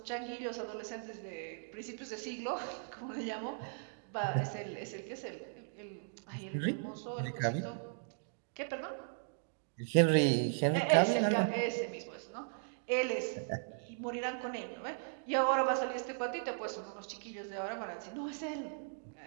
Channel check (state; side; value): silent; left; digital silence